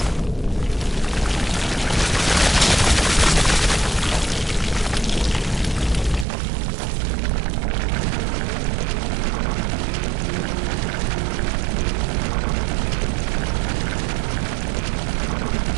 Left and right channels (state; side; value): drops out; left; at 6.2 s